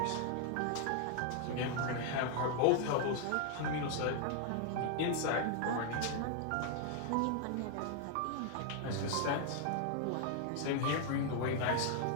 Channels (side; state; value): both; different; correlation 0.00